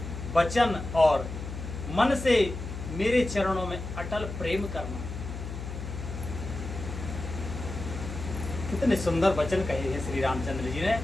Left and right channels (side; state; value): left; noise; hum, 8 dB below the sound